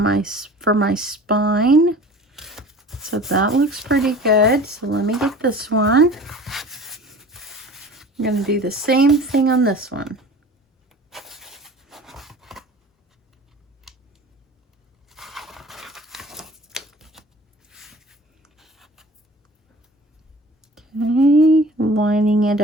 for my spine. So that looks pretty good. So let me get this one. I'm going to do the same thing on this one. Okay, lining it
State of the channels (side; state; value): both; normal; correlation 0.43